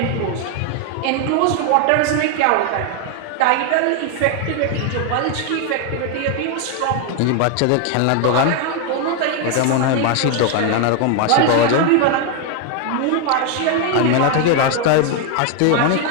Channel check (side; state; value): both; different; correlation 0.00